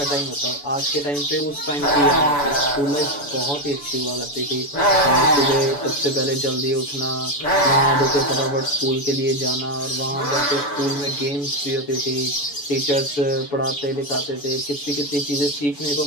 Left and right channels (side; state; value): right; late; 7.0 ms